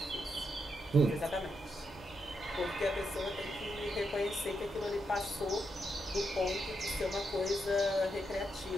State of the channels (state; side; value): normal; both; correlation 0.82